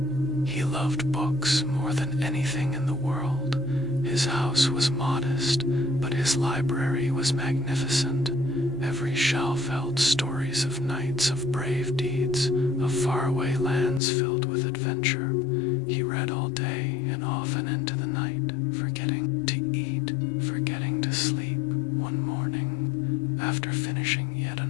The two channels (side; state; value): right; drops out; at 14.0 s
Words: he loved books more than anything in the world. His house was modest, but his library was magnificent. Every shelf held stories of knights, of brave deeds, of faraway lands filled with adventure. He read all day and often into the night, forgetting to eat, forgetting to sleep. One morning, after finishing yet